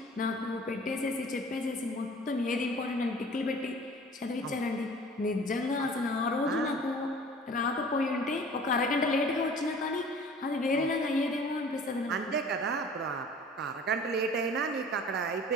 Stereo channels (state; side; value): normal; both; correlation 0.47